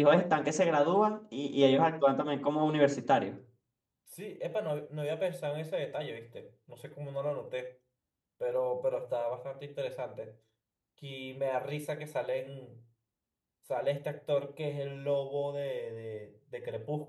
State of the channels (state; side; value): identical; both; correlation 1.00